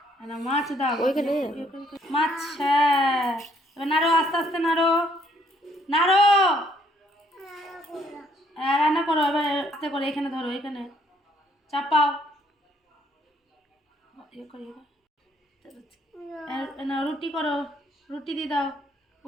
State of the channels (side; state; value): both; normal; correlation 0.66